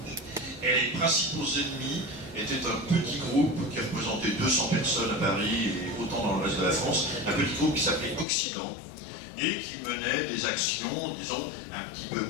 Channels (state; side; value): drops out; right; at 8.2 s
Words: Et les principaux ennemis étaient un petit groupe qui représentait 200 personnes à Paris et autant dans le reste de la France, un petit groupe qui s'appelait Occident et qui menait des actions, disons, un petit peu